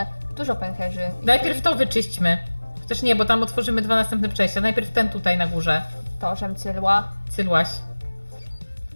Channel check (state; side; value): inverted; both; correlation -1.00